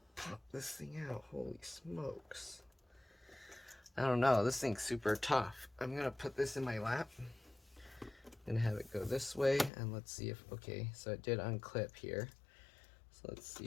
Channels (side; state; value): right; drops out; at 9.7 s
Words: pop this thing out. Holy smokes. I don't know, this thing's super tough. I'm gonna put this in my lap. I'm gonna have it go this way, and let's see if, okay, so it did unclip here. So let's